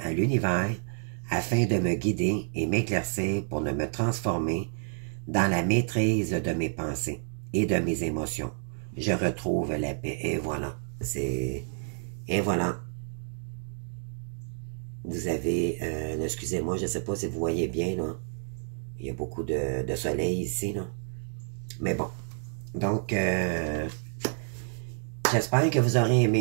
à l'univers afin de me guider et m'éclaircir pour me transformer dans la maîtrise de mes pensées et de mes émotions. Je retrouve la paix. Et voilà. Et voilà. Vous avez... excusez-moi, je ne sais pas si vous voyez bien, là. Il y a beaucoup de soleil ici, là. Mais bon. Donc, j'espère que vous aurez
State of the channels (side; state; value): left; silent; digital silence